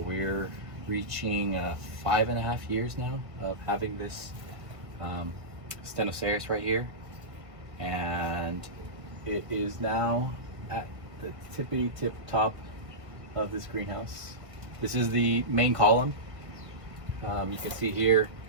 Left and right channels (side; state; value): left; late; 1.6 ms